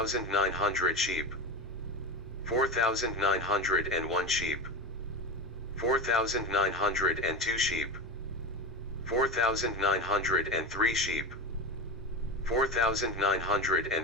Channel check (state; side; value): normal; both; correlation 0.22